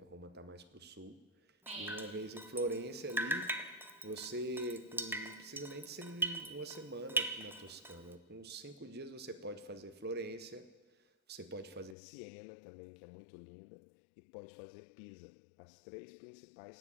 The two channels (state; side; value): drops out; right; at 12.0 s